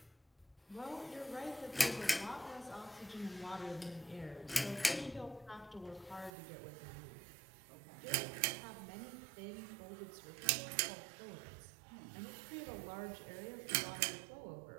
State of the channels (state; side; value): drops out; left; at 6.3 s